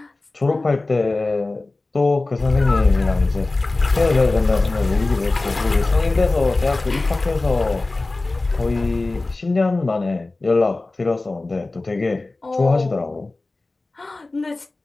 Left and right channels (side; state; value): right; quieter; 3.2 dB